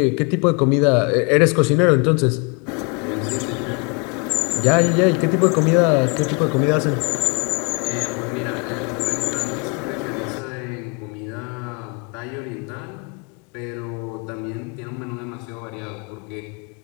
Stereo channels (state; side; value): quieter; right; 32.5 dB